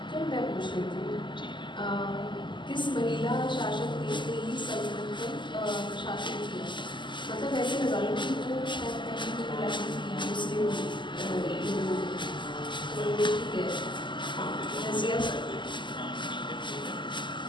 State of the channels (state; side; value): late; right; 0.23 ms